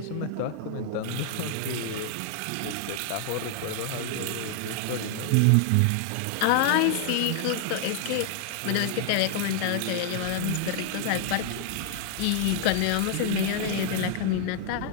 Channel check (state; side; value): different; both; correlation 0.00